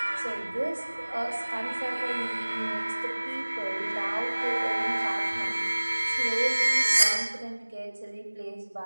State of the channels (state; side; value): inverted; both; correlation -1.00